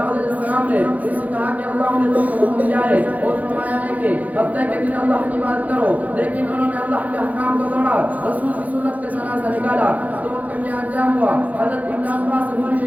علیہ السلام نے اس سے کہا کہ اللہ نے تم کو حکم دیا ہے اور فرمایا ہے کہ ہفتے کے دن اللہ کی بات کرو، لیکن انہوں نے اللہ کے احکام کو توڑا، رسول کی سنت کا جنازہ نکالا. تو ان کا کیا انجام ہوا؟ حضرت ابن عباس سے بولی کہ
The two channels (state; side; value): late; left; 0.077 ms